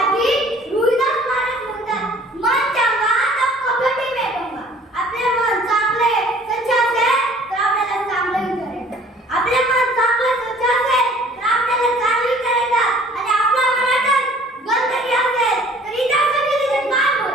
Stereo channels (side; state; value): both; normal; correlation 0.52